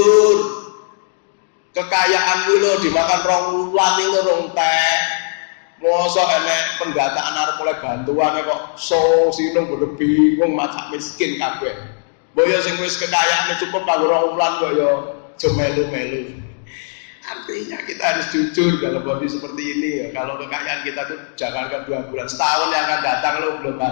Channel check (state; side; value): silent; right; digital silence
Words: kekayaan lo dimakan 2 wulan itu rong teh. Mosok enek pendataan arep oleh bantuan kok sinung bodo bingung macak miskin kabeh. Boyo sing wis kekayaane cukup kanggo 2 wulan kok ya aja melu-melu. Artinya kita harus jujur kalau bodi seperti ini ya. Kalau kekayaan kita tuh jangankan 2 bulan, setahun yang akan datang lo belum